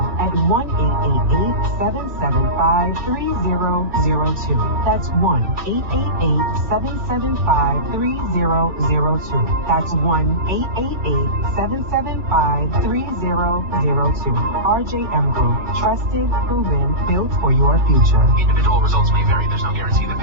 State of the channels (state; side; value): late; left; 2.9 ms